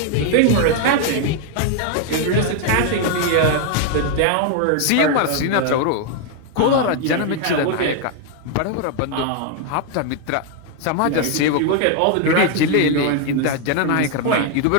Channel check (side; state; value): both; different; correlation 0.00